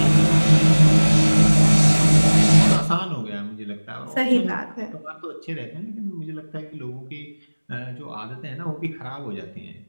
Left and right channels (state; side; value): inverted; both; correlation -1.00